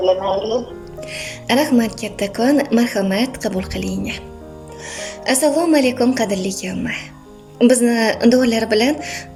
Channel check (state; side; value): identical; both; correlation 1.00